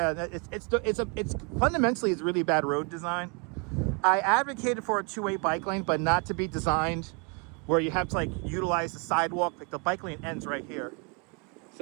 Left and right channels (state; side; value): quieter; left; 34.7 dB